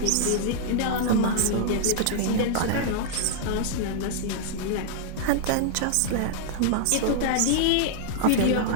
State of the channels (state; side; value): different; both; correlation -0.01